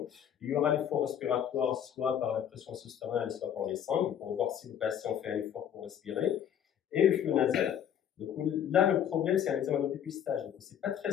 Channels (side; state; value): right; quieter; 9.4 dB